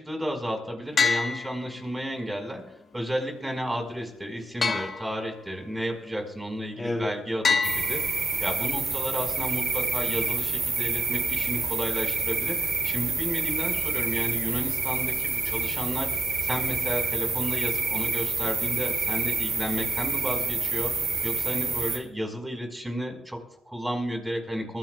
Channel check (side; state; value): both; normal; correlation 0.90